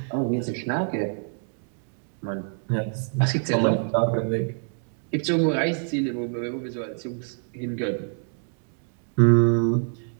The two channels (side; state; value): left; silent; 57 dB below the other